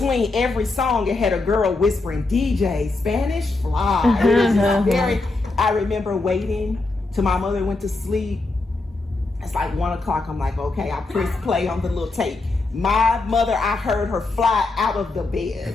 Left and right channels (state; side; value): quieter; right; 3.2 dB